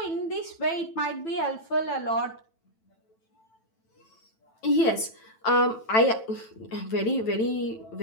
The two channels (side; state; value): right; late; 9.1 ms